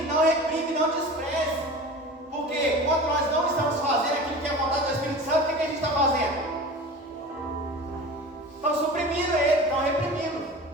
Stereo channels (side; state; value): both; normal; correlation 0.35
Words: não reprime, não despreze. Porque quando nós não estamos fazendo aquilo que é a vontade do Espírito Santo, o que a gente está fazendo? Estão suprimindo ele, estão reprimindo,